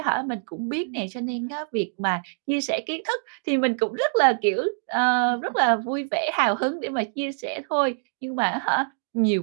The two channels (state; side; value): silent; left; digital silence